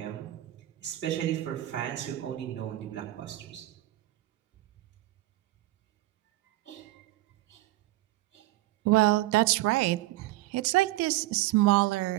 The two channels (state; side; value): quieter; left; 16.9 dB